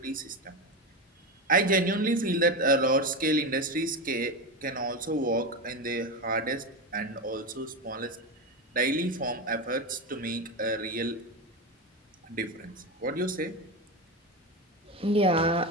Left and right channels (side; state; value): both; normal; correlation 0.17